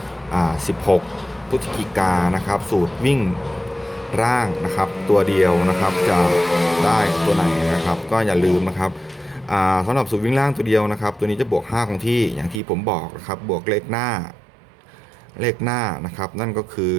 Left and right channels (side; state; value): left; drops out; at 12.6 s